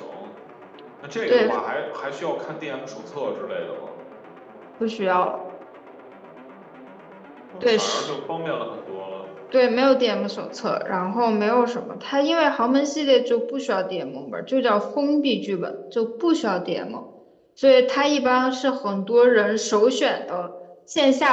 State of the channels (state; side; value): identical; both; correlation 1.00